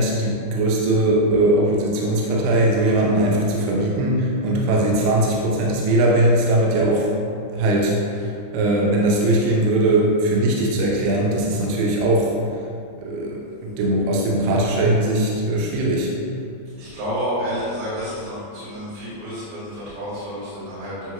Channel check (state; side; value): late; left; 29 ms